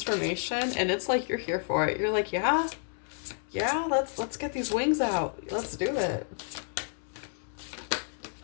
and it's like you're here for it. You're like, yeah, let's get these wings out. Let's do it.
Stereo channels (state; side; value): silent; right; digital silence